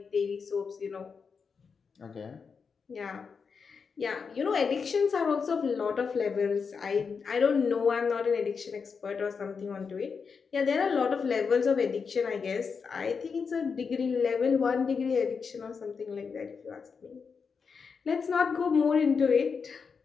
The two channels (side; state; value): right; quieter; 5.6 dB